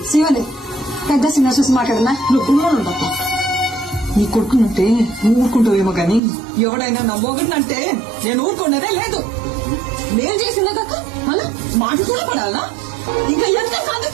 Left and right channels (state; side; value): drops out; left; at 6.2 s